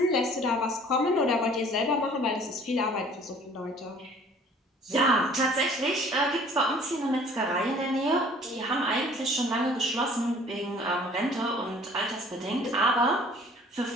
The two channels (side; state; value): both; normal; correlation 0.52